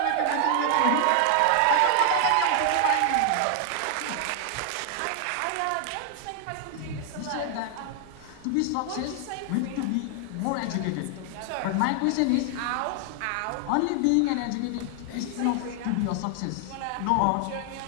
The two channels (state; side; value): different; both; correlation 0.00